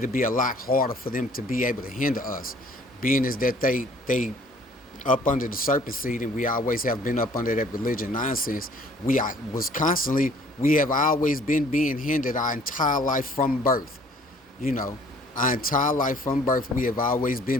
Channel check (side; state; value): both; normal; correlation 0.56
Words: be a lot harder for them to be able to hinder us. Being is that they up under the serpent seed, and we always have been up under that religion nonsense. We have always been being hindered our entire life from birth. You know, our entire life from birth, we have always